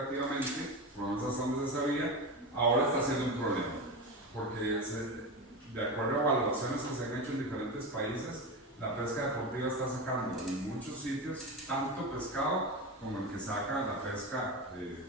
por lo menos hasta donde se sabía, ahora está siendo un problema, porque de acuerdo a evaluaciones que se han hecho en diferentes países, la pesca deportiva está sacando en muchos sitios tanto pescado como el que saca la pesca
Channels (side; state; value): both; normal; correlation 0.21